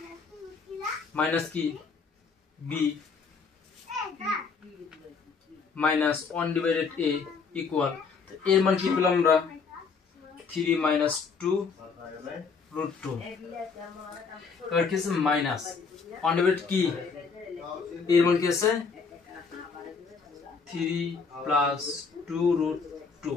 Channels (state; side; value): quieter; right; 5.2 dB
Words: মাইনাস কি b -1/a ইকুয়াল, এর মান কি পেলাম আমরা 3 - 2√2। এবার কি আছে মাইনাস 1/a কি এর মান কি আছে 3 + 2√2